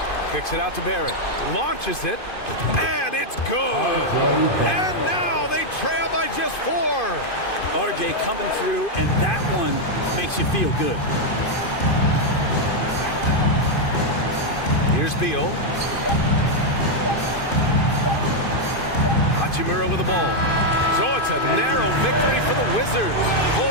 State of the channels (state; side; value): late; right; 2.5 ms